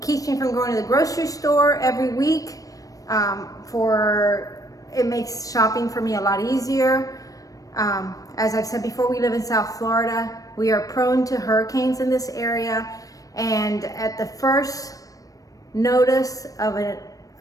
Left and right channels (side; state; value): right; late; 0.17 ms